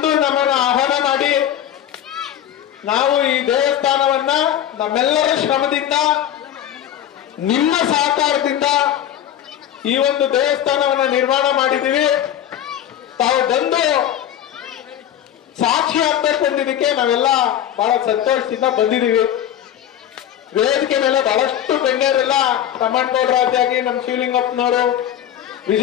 ನಮ್ಮನ್ನು ಆಹ್ವಾನ ಮಾಡಿ ನಾವು ಈ ದೇವಸ್ಥಾನವನ್ನ ನಮ್ಮೆಲ್ಲರ ಶ್ರಮದಿಂದ, ನಿಮ್ಮ ಸಹಕಾರದಿಂದ ಈ ಒಂದು ದೇವಸ್ಥಾನವನ್ನ ನಿರ್ಮಾಣ ಮಾಡಿದ್ದೀವಿ. ತಾವು ಬಂದು ಸಾಕ್ಷಿ ಆಗ್ಬೇಕು ಅಂದಿದ್ದಕ್ಕೆ ನಾವೆಲ್ಲ ಬಹಳ ಸಂತೋಷದಿಂದ ಬಂದಿದ್ದೀವಿ. ವೇದಿಕೆ ಮೇಲೆ ಬಹಳಷ್ಟು ಗಣ್ಯರೆಲ್ಲ, ತಮ್ಮಣ್ಣಗೌಡರಾದಿಯಾಗಿ, ನಮ್ಮ ಶಿವಲಿಂಗಪ್ಪನವರು,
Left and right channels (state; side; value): quieter; right; 10.8 dB